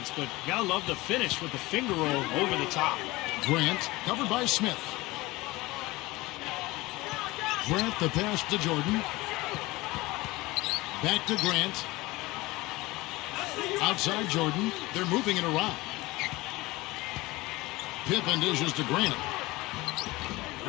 but gotta love the finish with the finger roll over the top. Grant covered by Smith. Grant the pass to Jordan. Back to Grant. Outside Jordan. They're moving it around. Pippen dishes to Grant.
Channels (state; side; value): quieter; right; 20.7 dB